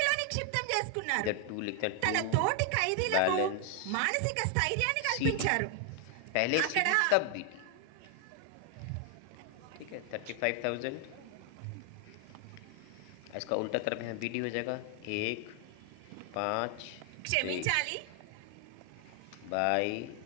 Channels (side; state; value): both; different; correlation 0.00